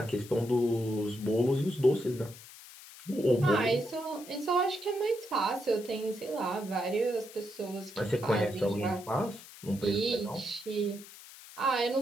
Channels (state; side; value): noise; left; hiss, 17 dB below the sound